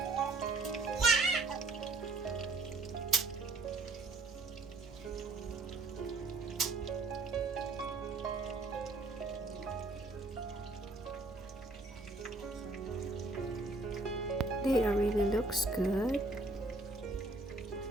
They really looks good.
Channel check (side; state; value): left; quieter; 3.1 dB